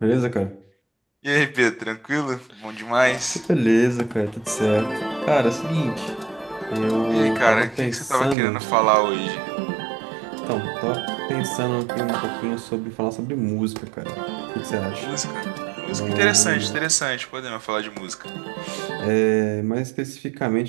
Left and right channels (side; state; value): left; drops out; at 8.3 s